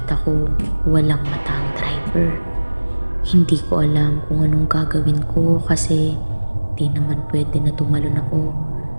ko walang mata ang driver. Hindi ko alam kung anong gagawin ko kasi di naman pwede na tumalon ako.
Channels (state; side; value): inverted; both; correlation -1.00